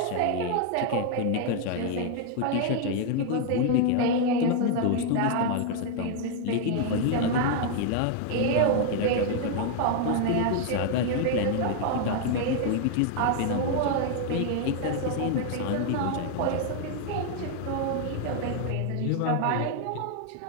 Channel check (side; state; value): both; different; correlation 0.00